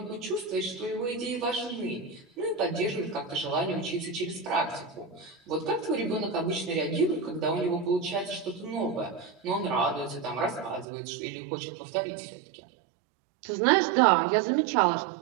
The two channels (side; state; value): left; drops out; at 10.9 s